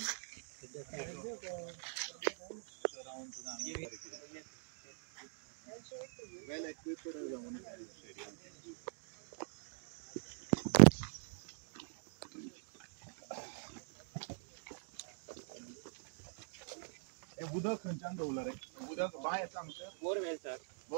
equipped उदक खंयच्यान दवरला रे उदक बाय सांगता बोरवेल सर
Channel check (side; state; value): left; silent; digital silence